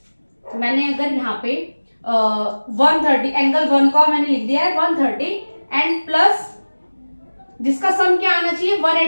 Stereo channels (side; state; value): both; inverted; correlation -1.00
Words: मैंने अगर यहाँ पे 130 एंगल 1 का मैंने लिख दिया है 130 एंड प्लस जिसका सम क्या आना चाहिए?